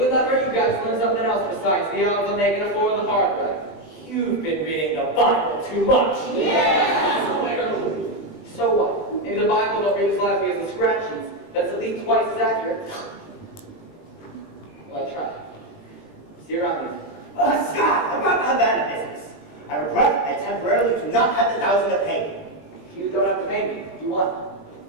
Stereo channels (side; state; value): right; late; 20 ms